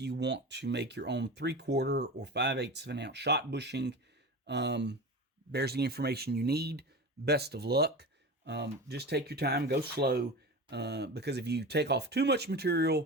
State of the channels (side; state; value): both; normal; correlation 0.29